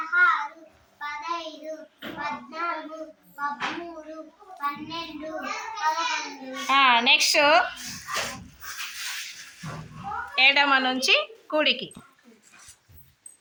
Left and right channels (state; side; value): identical; both; correlation 1.00